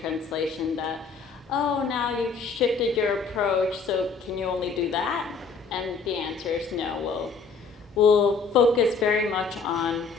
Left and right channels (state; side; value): quieter; right; 4.9 dB